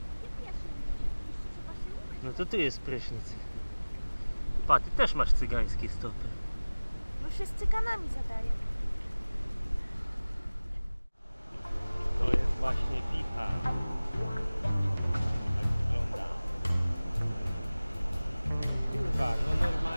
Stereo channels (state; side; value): inverted; both; correlation -0.99